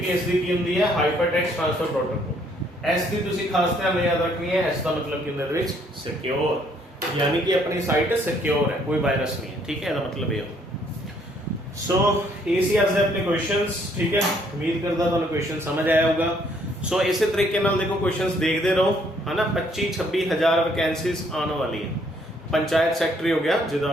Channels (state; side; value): normal; both; correlation 0.66